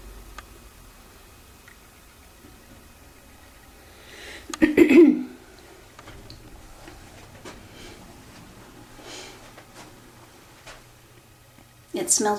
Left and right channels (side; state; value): both; identical; correlation 1.00